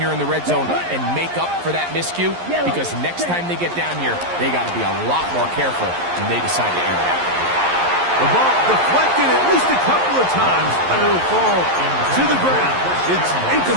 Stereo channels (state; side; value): late; left; 11 ms